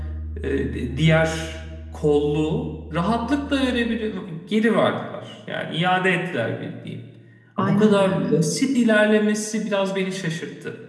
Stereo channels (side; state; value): both; identical; correlation 1.00